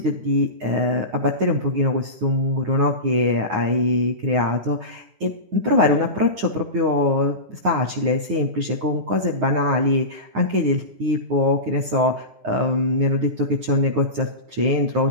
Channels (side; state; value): left; late; 9.6 ms